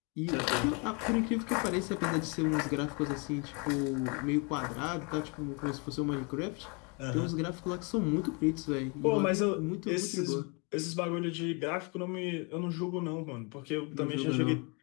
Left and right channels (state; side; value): quieter; right; 32.7 dB